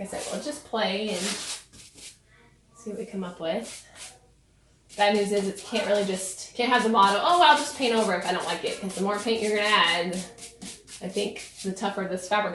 I said, we'll just play and see what we come up with. Bad news is it can't have the motto, oh, I'll just paint over if I don't like it, because the more paint you're gonna add, I think the tougher this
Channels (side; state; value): both; identical; correlation 1.00